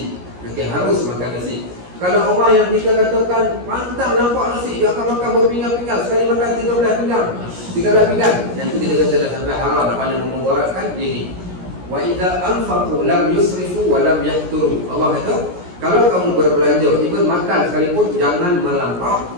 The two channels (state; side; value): late; left; 17 ms